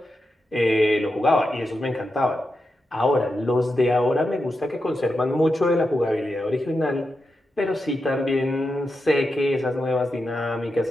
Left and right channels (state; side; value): normal; both; correlation 0.88